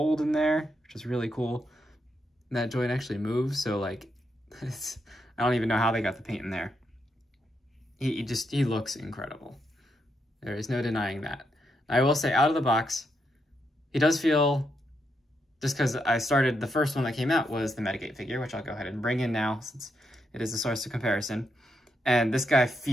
in there, which is really cool. And that joint actually moves, so like, I don't even know how they got the paint in there. He looks incredible. There is no denying that. I will say, out of the box, he does feel, just because I started, the first one that came out was the Metagate figure, which I'll go ahead and bring in now since it is a source of comparison. And this guy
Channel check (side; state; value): both; normal; correlation 0.81